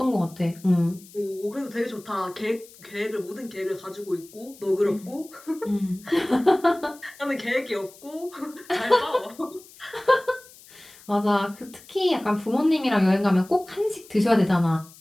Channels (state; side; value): noise; left; hiss, 22 dB below the sound